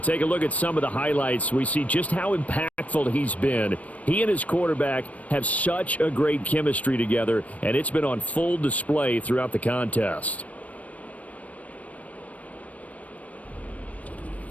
a look at some of the highlights, we see just how impactful he's been. He and his quarterback have such a great chemistry together, and it's been on full display throughout the contest.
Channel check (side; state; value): right; late; 0.068 ms